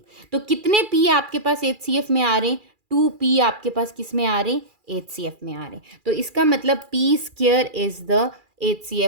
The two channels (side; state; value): left; late; 2.4 ms